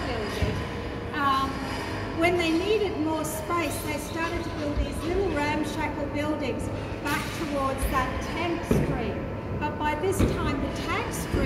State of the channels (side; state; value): both; identical; correlation 1.00